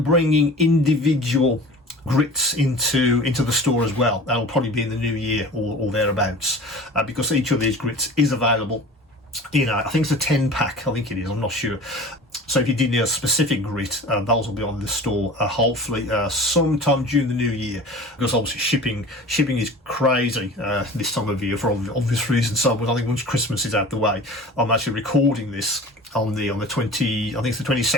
bringing individual grits into the store as well. That'll probably be in the new year or thereabouts, because each of these grits is available. I think it's a 10 pack, I think it is, I'm not sure. So if you did need a specific grit, those will be on the store hopefully sometime during the new year, because obviously shipping is crazy this time of year for obvious reasons. So I think once Christmas is out the way, I'm actually recording this on the 20, I think it's the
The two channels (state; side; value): normal; both; correlation 0.39